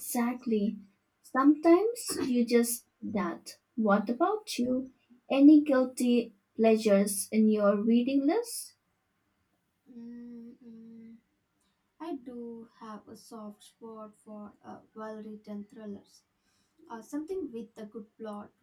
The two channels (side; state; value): both; identical; correlation 1.00